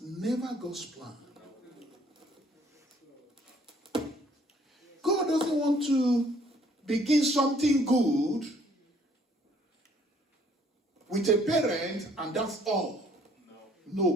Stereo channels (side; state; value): both; normal; correlation 0.61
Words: never God's plan. God doesn't want to begin something good with a parent and that's all.